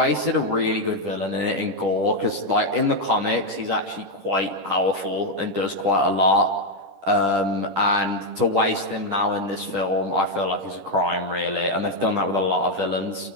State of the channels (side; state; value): left; late; 10 ms